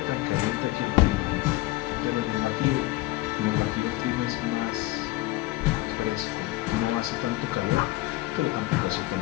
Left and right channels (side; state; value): right; quieter; 18.7 dB